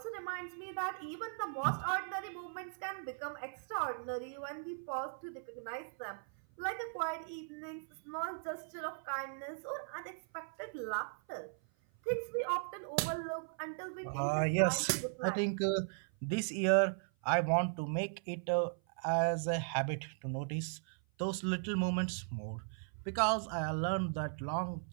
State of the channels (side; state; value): left; silent; 53 dB below the other